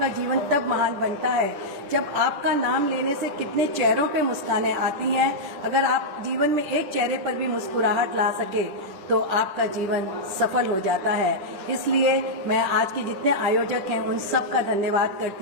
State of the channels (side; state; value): left; late; 10 ms